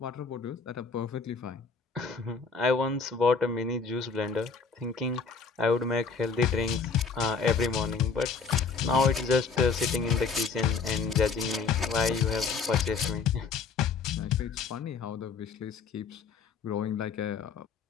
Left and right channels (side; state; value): right; quieter; 5.1 dB